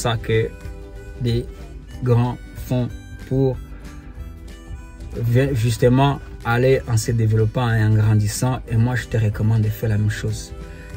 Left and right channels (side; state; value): both; identical; correlation 1.00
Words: que des grands font pour justement aller en se développant et en grandissant. Et moi, je te recommande de faire la même chose.